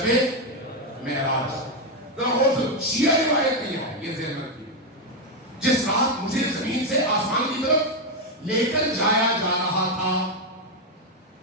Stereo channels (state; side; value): normal; both; correlation 0.05